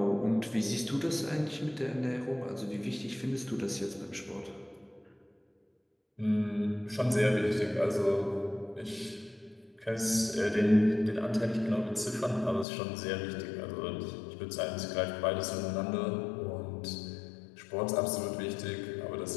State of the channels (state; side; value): drops out; right; at 12.7 s